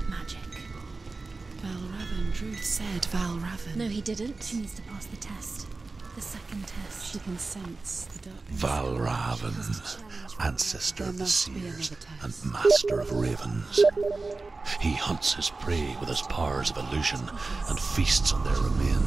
magic. Val Raven. Druth said Val Raven. No, he didn't. She needs to pass the test. The second test. She can sense the darkness. Valravan, ancestor of the must be seers another and test. master of ravens. He hunts his prey with his powers of illusion and feasts on their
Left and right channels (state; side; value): quieter; left; 3.6 dB